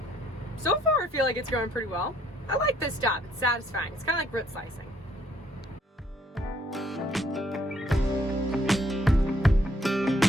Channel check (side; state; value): both; normal; correlation 0.67